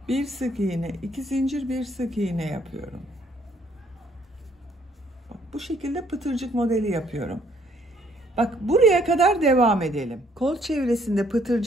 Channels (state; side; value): normal; both; correlation 0.65